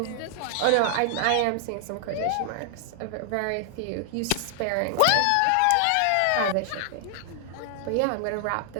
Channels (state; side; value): different; both; correlation 0.00